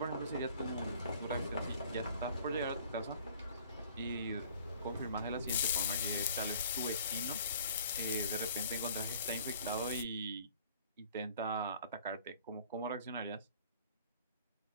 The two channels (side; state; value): both; inverted; correlation -0.51